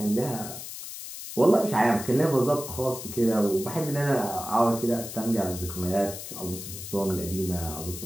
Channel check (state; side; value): noise; left; hiss, 10 dB below the sound